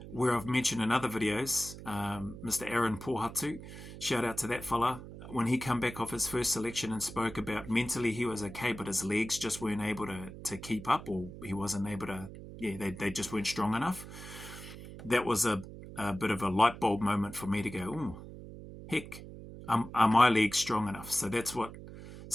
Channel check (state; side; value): noise; right; hum, 13 dB below the sound